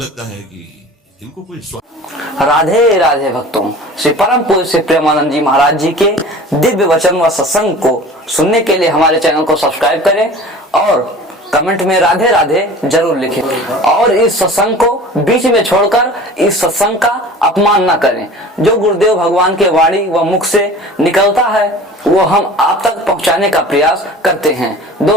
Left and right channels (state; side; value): normal; both; correlation 0.41